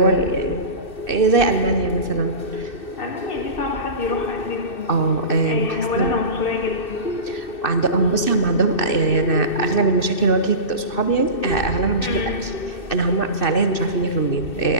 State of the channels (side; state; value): right; late; 2.6 ms